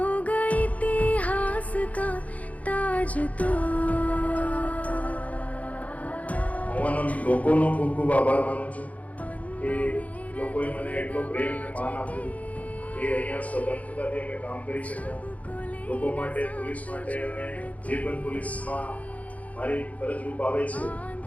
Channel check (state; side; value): late; right; 0.070 ms